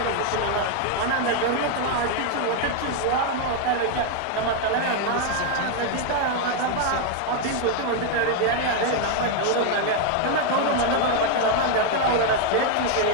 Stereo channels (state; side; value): different; both; correlation 0.01